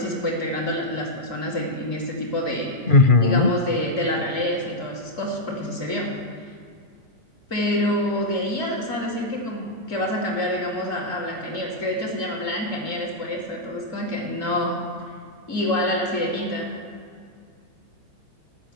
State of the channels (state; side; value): late; right; 2.4 ms